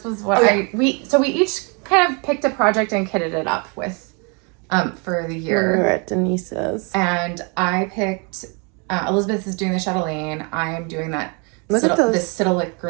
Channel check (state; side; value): quieter; left; 33.4 dB